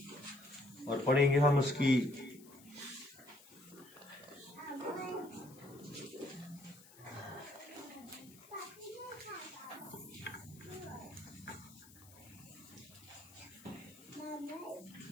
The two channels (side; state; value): left; noise; hiss, 22 dB below the sound